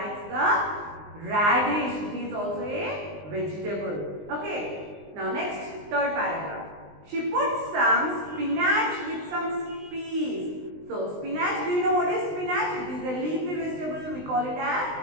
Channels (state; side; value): late; left; 19 ms